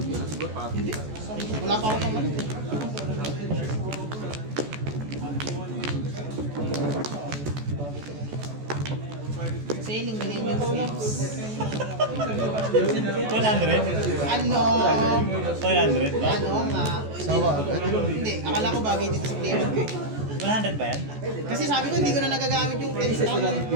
Hindi. Wala pa ako pamalit eh. Sailing Millennium Slips. 100? Ano? 100 ba? Ano nga? Sawa. Hindi, akala ko bagay dito sa player ko eh. 100 ba yan? Kasi sabi ko hindi ko na nagagamit yung 32.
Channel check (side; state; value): left; late; 14 ms